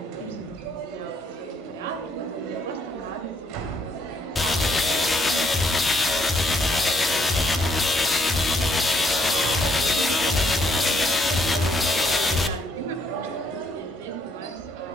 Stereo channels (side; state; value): both; normal; correlation 0.70